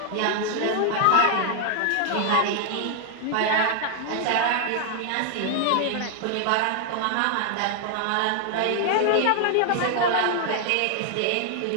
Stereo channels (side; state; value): both; different; correlation 0.00